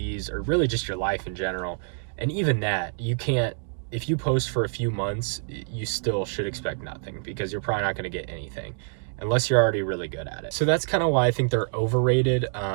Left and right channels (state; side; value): silent; left; 60 dB below the other